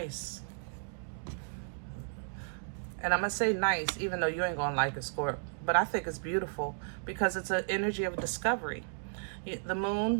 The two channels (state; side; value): silent; left; digital silence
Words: And I'm going to say nice, even though you ain't going to like it, Scorp. But I think it's beautiful because it's an energy of discovery. The